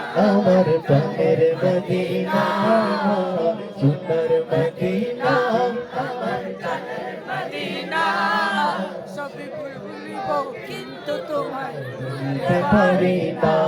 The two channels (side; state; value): both; identical; correlation 1.00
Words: আমার প্রাণের মদিনা সোনার মদিনা আমার প্রাণের মদিনা সবই ভুলিব কিন্তু তোমায় ভুলতে পারি না